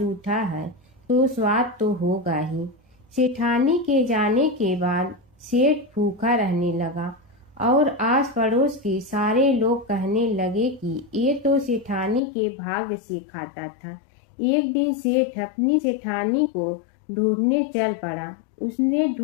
है तो स्वाद तो होगा ही। सेठानी के जाने के बाद सेठ भूखा रहने लगा और आस पड़ोस के सारे लोग कहने लगे कि ये तो सेठानी के भाग्य से खाता था। एक दिन सेठ अपनी सेठानी को ढूंढने चल पड़ा। उसने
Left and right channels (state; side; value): drops out; right; at 12.2 s